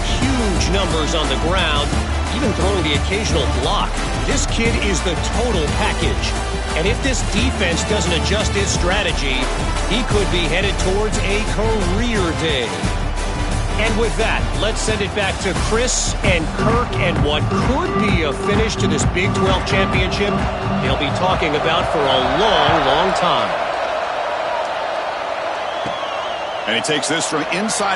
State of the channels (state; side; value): identical; both; correlation 1.00